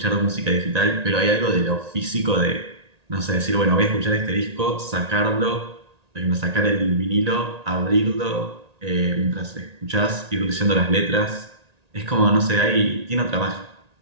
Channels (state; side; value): late; left; 1.9 ms